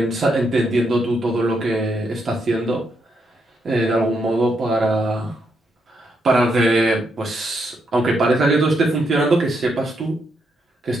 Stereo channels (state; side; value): normal; both; correlation 0.79